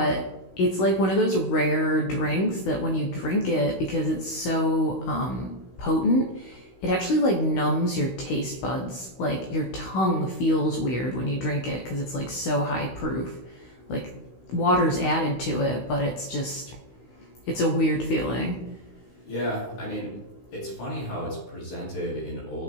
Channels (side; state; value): right; late; 16 ms